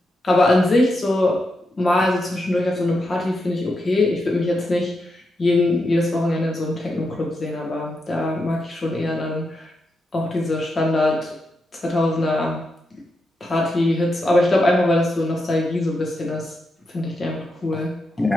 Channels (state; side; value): normal; both; correlation 0.85